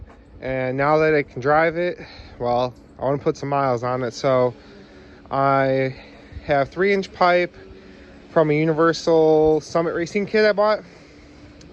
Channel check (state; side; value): identical; both; correlation 1.00